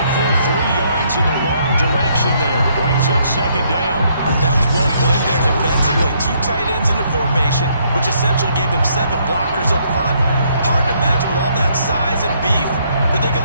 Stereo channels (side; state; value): both; inverted; correlation -0.70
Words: full 3 yards in the wrong direction there. Brings up second down. That was well played there defensively. 2 tight ends in the formation, which essentially gave them 7 blockers up front. Hard to imagine with all that size and beef that they